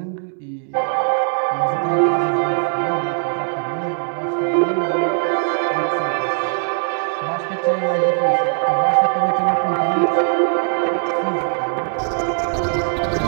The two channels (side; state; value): left; silent; 66 dB below the other